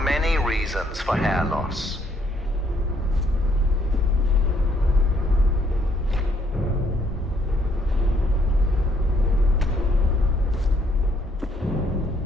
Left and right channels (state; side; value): normal; both; correlation 0.68